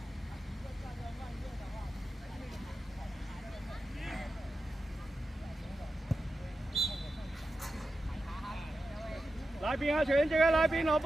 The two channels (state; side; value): normal; both; correlation 0.91